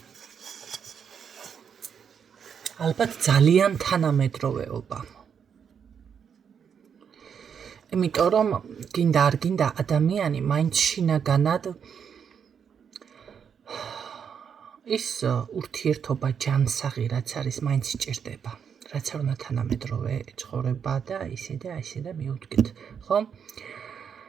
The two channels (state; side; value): quieter; left; 7.3 dB